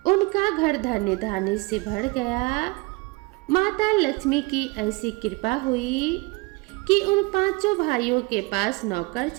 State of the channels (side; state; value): left; quieter; 26.2 dB